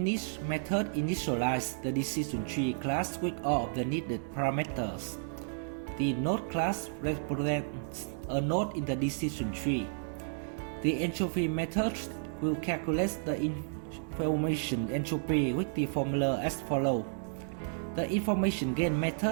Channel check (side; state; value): left; silent; digital silence